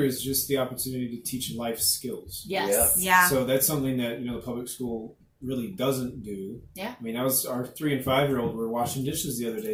is just the opportunity to teach life skills. Yes. Yeah. So that's something that the public school really doesn't do. Yeah. I mean, our 3 and 5 year old were washing dishes the other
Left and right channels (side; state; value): both; identical; correlation 1.00